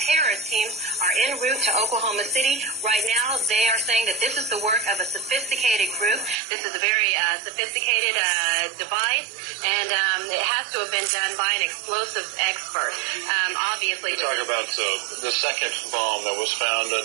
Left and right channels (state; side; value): drops out; left; at 6.4 s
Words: teams are en route to Oklahoma City. Right now, they are saying that this is the work of a sophisticated group. This is a very sophisticated device, and it has to have been done by an explosives expert. Obviously, we talk about the second bomb that was found.